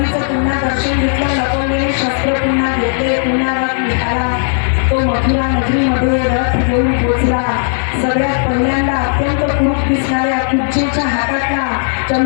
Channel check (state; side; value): silent; right; digital silence